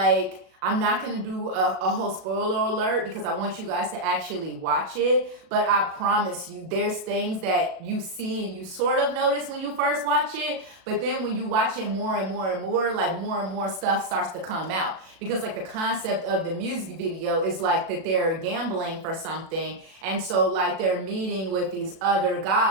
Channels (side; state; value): left; late; 37 ms